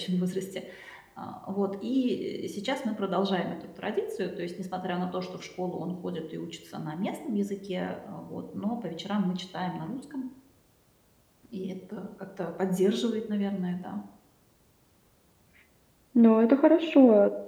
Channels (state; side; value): identical; both; correlation 1.00